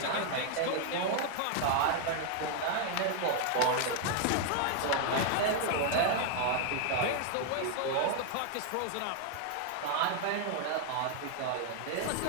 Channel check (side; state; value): both; different; correlation 0.00